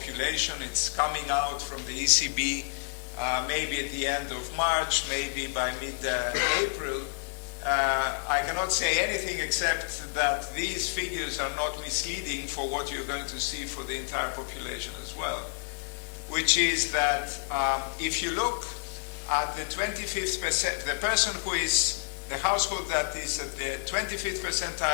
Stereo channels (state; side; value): silent; right; digital silence